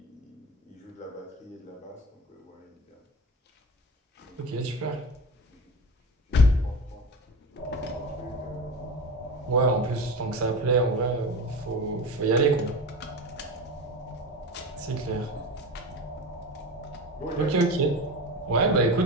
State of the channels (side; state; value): both; normal; correlation 0.27